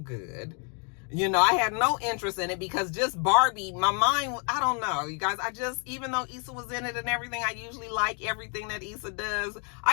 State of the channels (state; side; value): quieter; right; 37.9 dB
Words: You know, I had no interest in it because just Barbie, my mind, I don't know, you guys, even though Issa was in it and everything, I usually like everything that Issa does.